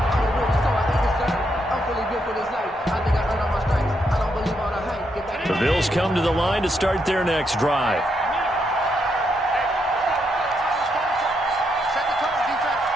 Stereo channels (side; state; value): both; normal; correlation 0.79